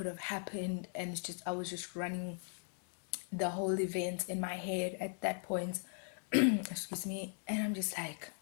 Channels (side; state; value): right; silent; 52 dB below the other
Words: have happened, and it's just, I was just running the whole event in my head at that point. Excuse me. And I'm just like,